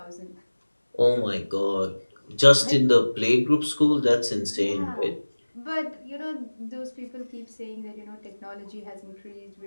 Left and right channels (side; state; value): both; inverted; correlation -1.00